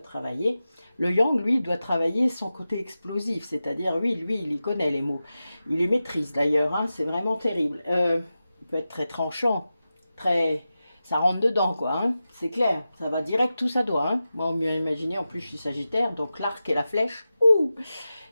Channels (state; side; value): inverted; both; correlation -0.93